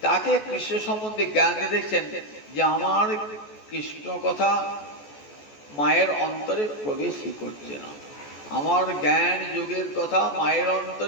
তাকে কৃষ্ণ সম্বন্ধে জ্ঞান দিয়ে দেখছেন যে আমার কৃষ্ণ কথা মায়ের অন্তরে প্রবেশই করছে না, আমার জ্ঞান যুগের কথা মায়ের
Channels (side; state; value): right; late; 14 ms